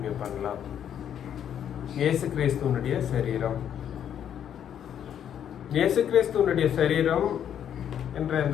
பண்ணலாம். இயேசு கிறிஸ்துவனுடைய சரீரம், இயேசு கிறிஸ்துவனுடைய சரீரம் என்ற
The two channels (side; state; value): right; quieter; 9.4 dB